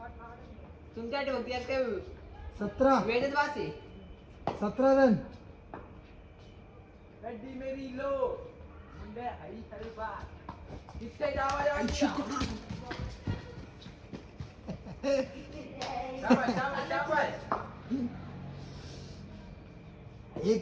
तुमच्या बघते काय 17 वेळेच वासे 17 रन. मेरी लो मुंडे आई हरी बा कितने जावा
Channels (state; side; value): identical; both; correlation 1.00